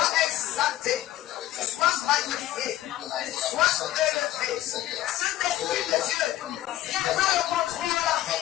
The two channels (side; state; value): right; quieter; 14.5 dB